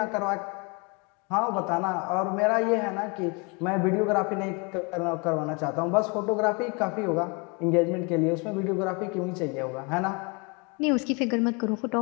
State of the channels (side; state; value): right; quieter; 31.3 dB